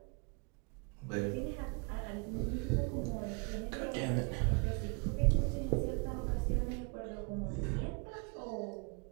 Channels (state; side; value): quieter; left; 34.3 dB